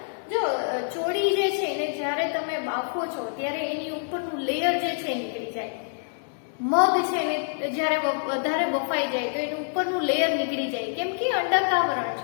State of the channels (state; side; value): silent; right; digital silence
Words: જો ચોળી જે છે એને જ્યારે તમે બાફો છો ત્યારે એની ઉપરનું લેયર જે છે નીકળી જાય. મગ છે એને જ્યારે વધારે બફાઈ જાય તો એનું ઉપરનું લેયર નીકળી જાય, કેમ કે અંડકાવરણ